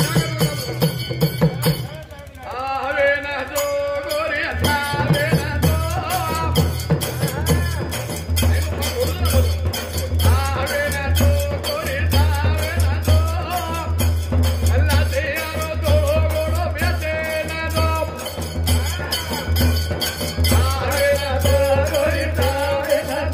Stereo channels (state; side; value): identical; both; correlation 1.00